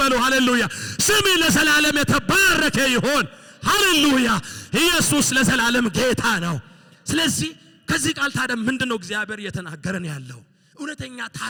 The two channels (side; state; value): both; identical; correlation 1.00